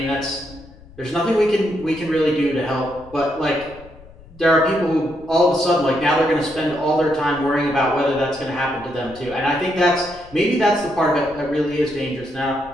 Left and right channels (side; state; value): left; noise; rumble, 22 dB below the sound